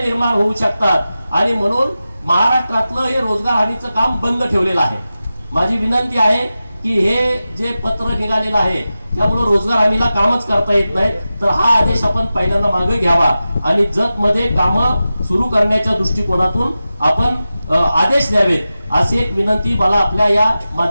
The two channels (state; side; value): inverted; both; correlation -0.94